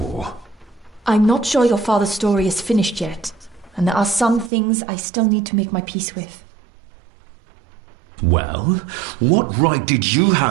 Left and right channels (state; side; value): drops out; left; at 4.5 s